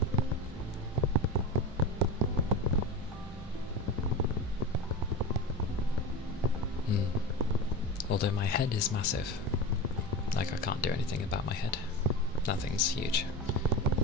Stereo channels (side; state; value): both; normal; correlation 0.26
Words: Although my head is massive. Like, I can't do anything about my head. That thing's huge.